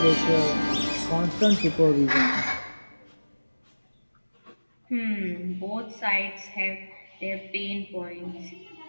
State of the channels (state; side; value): inverted; both; correlation -1.00